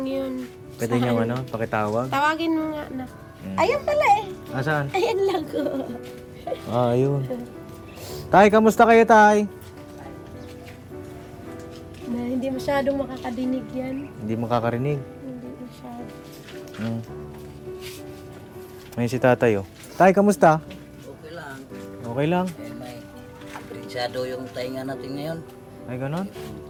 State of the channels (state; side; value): identical; both; correlation 1.00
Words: yun. Pwede nyo pakitawag? Tawagin mo nga na. Ayun pala eh. Asan? Ayan lang ko. Ayun. Tay, kamusta kayo, tay? Na hindi masyadong makakadinig yan. Hindi makakarinig. Hindi masyado. Ngayon si tatay, oh. Tay, kamusta? Okay lang. Okay lang. May aprensado yung tainga natin ngayon. Ay, ganon?